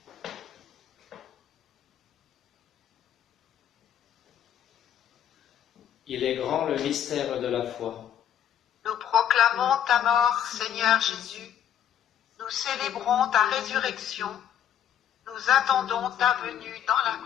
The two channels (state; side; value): quieter; right; 9.9 dB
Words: Il est grand le mystère de la foi. Nous proclamons ta mort, Seigneur Jésus. Nous célébrons ta résurrection. Nous attendons ta venue dans la